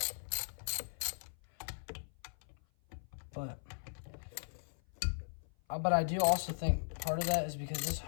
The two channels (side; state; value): right; silent; 52 dB below the other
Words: But I do also think part of that is because this